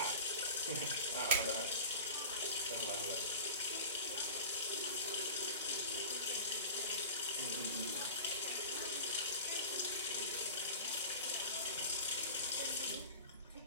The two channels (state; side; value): inverted; both; correlation -0.33